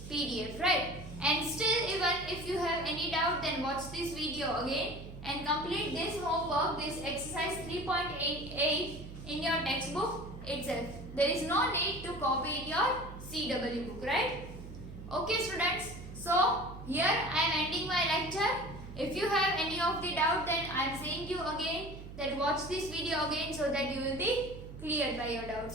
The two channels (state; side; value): noise; right; hum, 12 dB below the sound